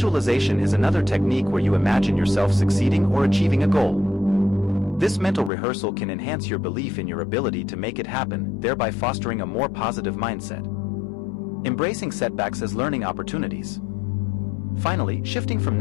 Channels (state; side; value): drops out; right; at 5.5 s